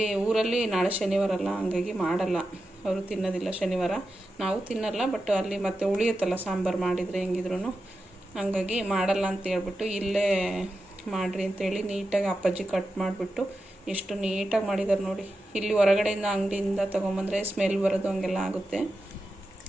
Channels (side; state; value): both; normal; correlation 0.90